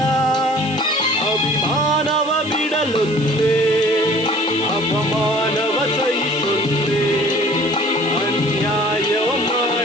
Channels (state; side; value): noise; right; hiss, 19 dB below the sound